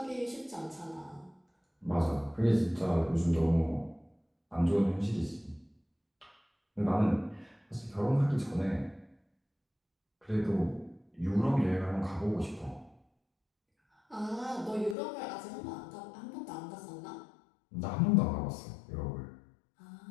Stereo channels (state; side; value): drops out; right; at 15.0 s